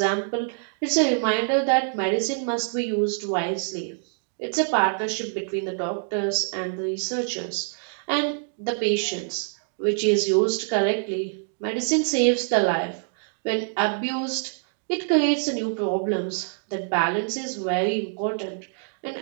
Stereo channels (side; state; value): left; silent; digital silence